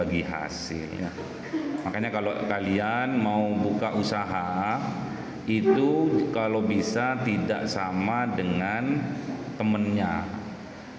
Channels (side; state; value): both; identical; correlation 1.00